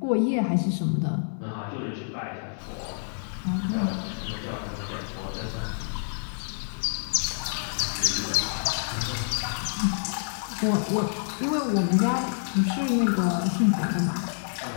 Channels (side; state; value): right; silent; 60 dB below the other